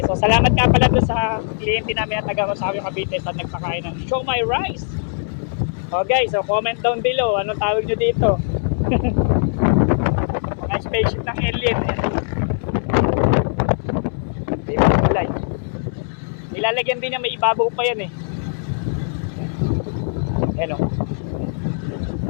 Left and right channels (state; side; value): silent; right; 64 dB below the other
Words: So, salamat nga pala doon sa kliyente namin na taga Rosario, Cavite sa nagpakain ng Show My Rice. Okay, so comment down below. Anong tawag nyo dito? Mga spaceship ng alien. Ibang kulay. Nilalagyan din niya, may ibabaw pa yan eh. Hello.